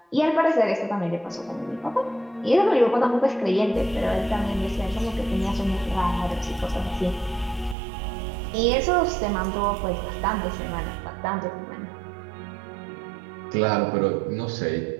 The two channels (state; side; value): drops out; left; at 7.8 s